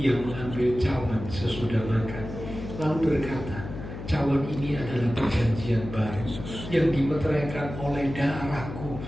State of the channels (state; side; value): noise; left; hum, 9 dB below the sound